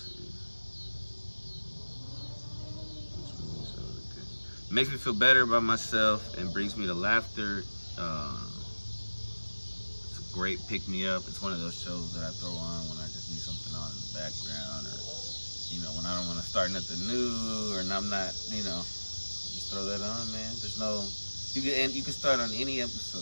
It makes me feel better about myself and brings me to laughter. It's a great pick-me-up. It's one of those shows that I throw on when I just need something on in the background, or when I don't want to start nothing new, or I'm not, just throw that on, man. There's no, you can start on any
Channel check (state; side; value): inverted; both; correlation -1.00